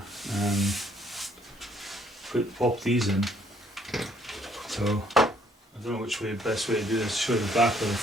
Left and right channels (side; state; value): both; normal; correlation 0.65